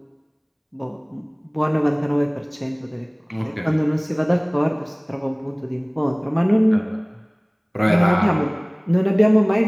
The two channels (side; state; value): both; identical; correlation 1.00